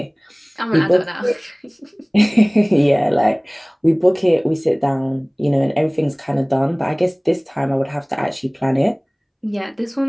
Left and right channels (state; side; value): identical; both; correlation 1.00